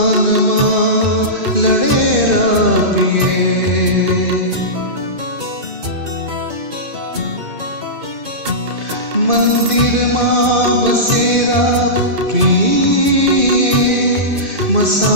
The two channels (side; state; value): left; late; 2.6 ms